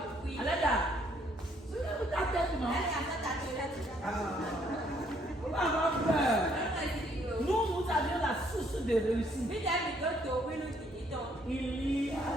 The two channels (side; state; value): both; normal; correlation 0.67